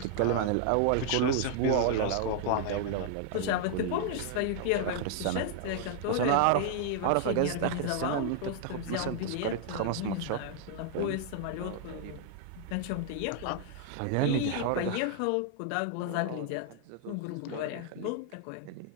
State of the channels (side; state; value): both; different; correlation 0.00